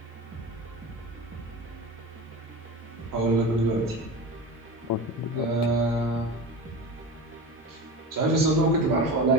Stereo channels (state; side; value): normal; both; correlation 0.29